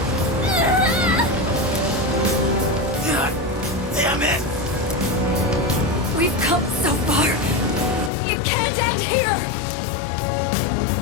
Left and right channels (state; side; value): drops out; right; at 8.1 s